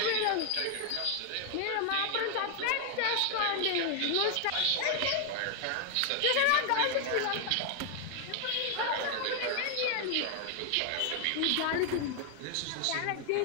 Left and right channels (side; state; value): both; different; correlation 0.00